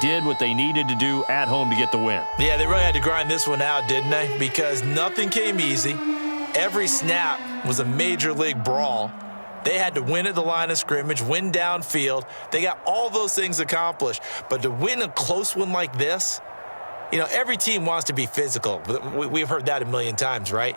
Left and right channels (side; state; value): both; inverted; correlation -1.00